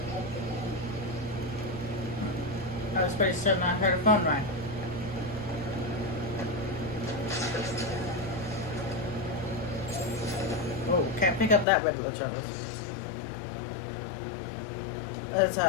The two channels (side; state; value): right; drops out; at 11.7 s